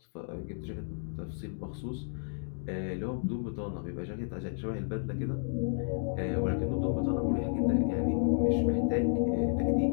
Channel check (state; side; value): silent; right; digital silence